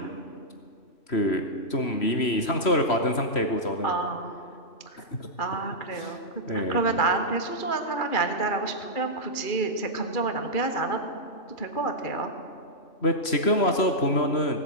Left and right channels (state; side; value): late; right; 3.0 ms